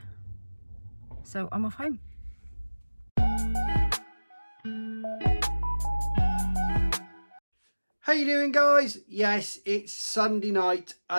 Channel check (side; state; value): both; inverted; correlation -1.00